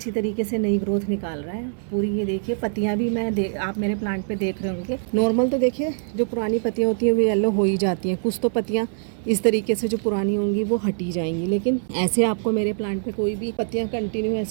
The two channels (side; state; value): left; silent; 62 dB below the other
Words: तरीके से नई ग्रोथ निकाल रहा है पूरी। ये देखिए पत्तियाँ भी आप मेरे प्लांट पे देख रहे होंगे, नॉर्मल तो देखिए जो पुरानी पत्तियाँ होती हैं वो येलो हो ही जाती हैं, कुछ तो पत्तियाँ इस तरीके से जो पुरानी होंगी वो हटी जाएंगी। लेकिन ऐसे आपको मेरे प्लांट पे कोई भी पत्तियाँ कंटिन्यू